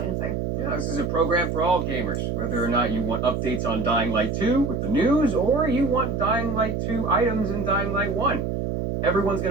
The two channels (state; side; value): noise; right; hum, 1 dB below the sound